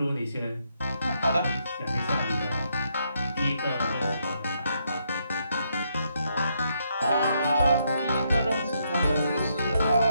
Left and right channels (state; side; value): inverted; both; correlation -0.76